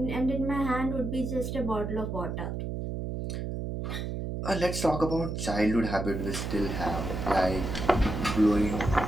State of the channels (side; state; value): right; noise; hum, 4 dB below the sound